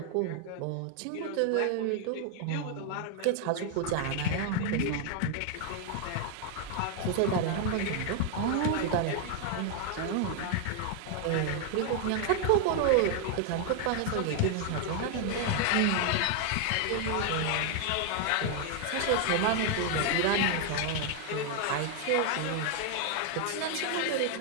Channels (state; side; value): different; both; correlation 0.00